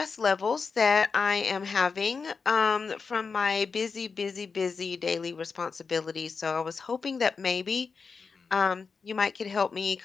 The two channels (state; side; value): quieter; right; 5.1 dB